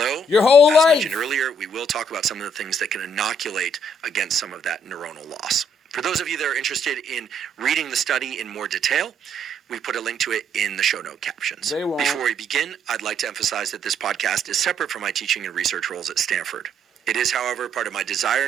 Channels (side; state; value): both; normal; correlation 0.69